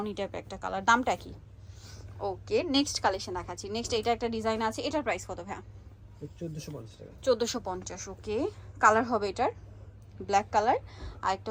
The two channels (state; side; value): identical; both; correlation 1.00